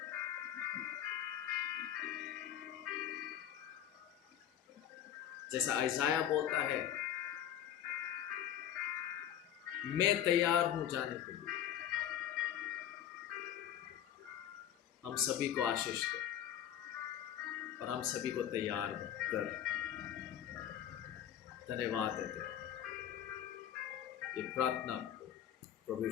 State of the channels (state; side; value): quieter; right; 10.5 dB